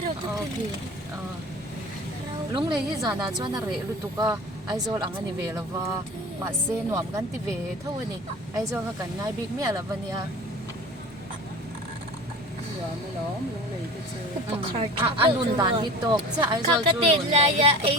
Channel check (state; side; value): normal; both; correlation 0.38